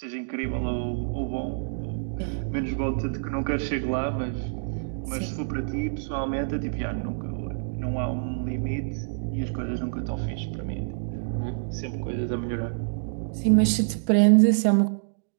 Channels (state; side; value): silent; left; digital silence